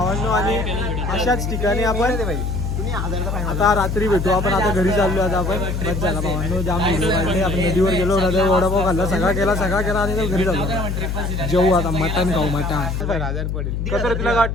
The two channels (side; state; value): left; noise; hum, 2 dB below the sound